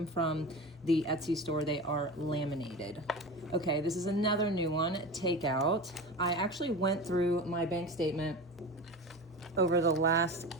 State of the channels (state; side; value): normal; both; correlation 0.29